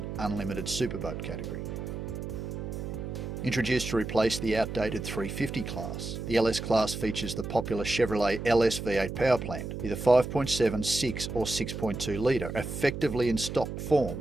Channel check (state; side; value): noise; right; hum, 6 dB below the sound